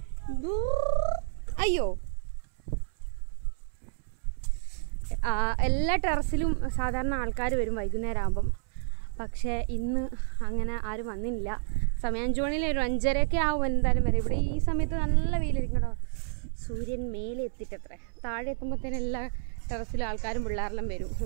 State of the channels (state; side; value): silent; left; 58 dB below the other